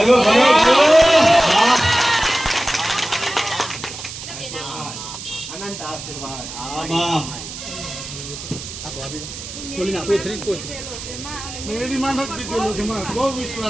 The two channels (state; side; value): noise; right; hiss, 10 dB below the sound